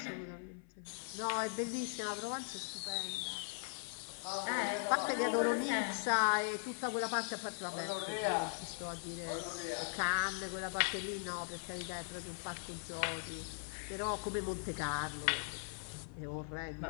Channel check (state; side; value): silent; right; 51 dB below the other